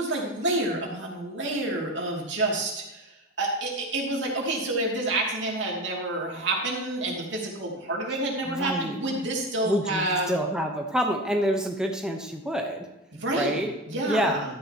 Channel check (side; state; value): both; normal; correlation 0.26